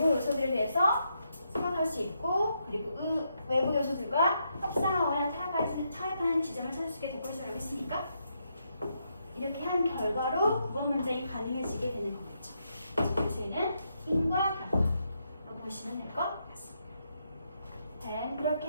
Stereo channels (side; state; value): both; inverted; correlation -0.80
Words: 요소들에 대해서 생각할 수 있고 그리고 외부 요소들과 협상하거나 타협하는 지점을 찾을 수 있게 될 것이라고 했으니까 이렇게 한 결과로 9번 문장이 가능해지게 되는 거겠죠. 그래서 얘는 인과 결과라고 보시면 될 것 같습니다. 네,